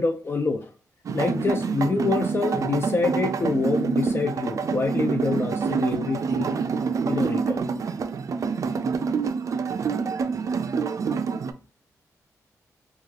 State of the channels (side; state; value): both; normal; correlation 0.76